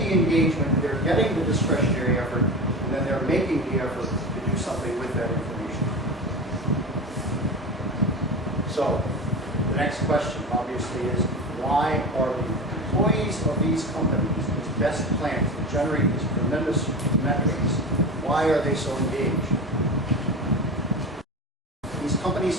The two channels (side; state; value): both; normal; correlation 0.28